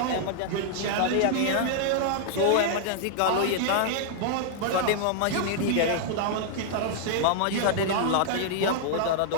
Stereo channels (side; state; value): both; different; correlation -0.01